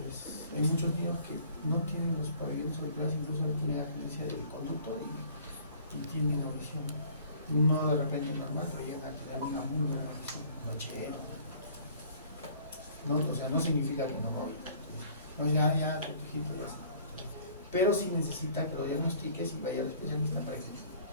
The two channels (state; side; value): inverted; both; correlation -0.53